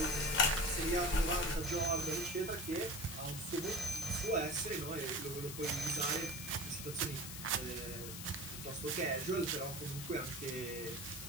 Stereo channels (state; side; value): noise; left; hiss, 8 dB below the sound